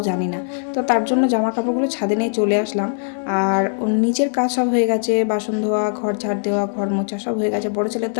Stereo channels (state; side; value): silent; right; digital silence